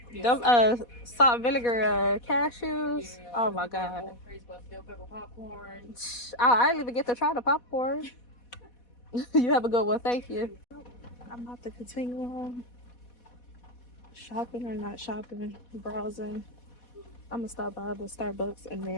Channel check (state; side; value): late; right; 4.1 ms